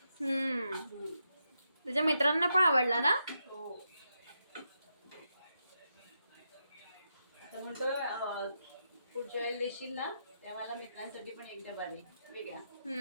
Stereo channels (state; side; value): inverted; both; correlation -0.84